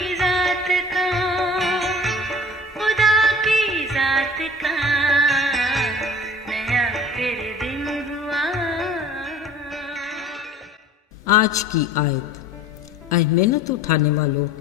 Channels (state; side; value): normal; both; correlation 0.45